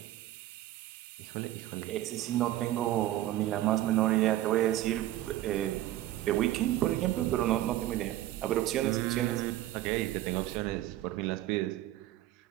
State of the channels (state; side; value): quieter; left; 14.6 dB